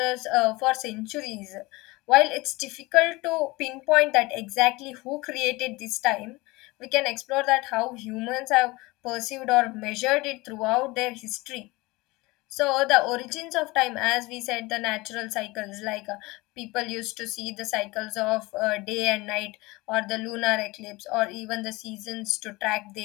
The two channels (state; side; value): quieter; right; 22.3 dB